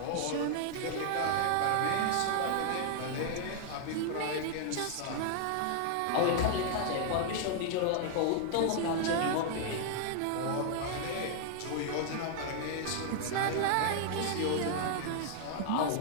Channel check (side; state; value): both; different; correlation 0.00